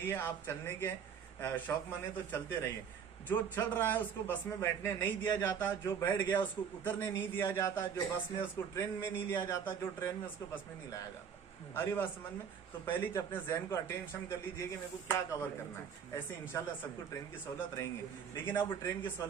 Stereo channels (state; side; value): quieter; left; 7.3 dB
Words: आप चलने के शौक मने तो चलते रहिए। जो चल रहा है उसको बस में बैठने नहीं दिया जाता, जो बैठ गया उसको उतरने नहीं दिया जाता, जो बस में उसको ट्रेन में नहीं लिया जाता, जो ट्रेन में उसको बस में नहीं लाया जाता। अरे बात समझ में? तो पहले अपने जहन को अटेंशन कर लीजिए कि मेरे को क्या कवर करना है। ऐसे इंशाल्लाह सबको ट्रेन की सहूलत रहेंगे। लेकिन अब ट्रेन की